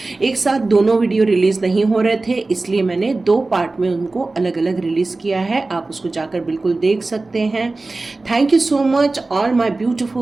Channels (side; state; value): left; quieter; 3.3 dB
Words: एक साथ दोनों वीडियो रिलीज़ नहीं हो रहे थे, इसलिए मैंने 2 पार्ट में उनको अलग अलग रिलीज़ किया है। आप उसको जाकर बिल्कुल देख सकते हैं। Thank you so much all my